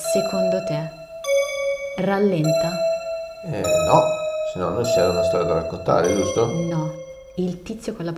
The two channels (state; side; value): identical; both; correlation 1.00